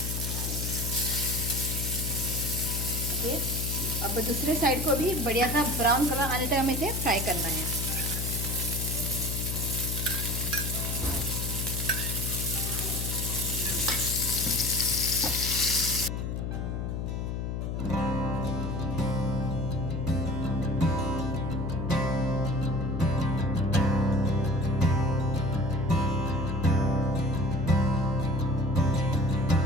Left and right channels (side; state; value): left; noise; hum, 2 dB below the sound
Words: ओके, अब दूसरे साइड को भी बढ़िया सा ब्राउन कलर आने तक हमें इसे फ्राई करना है।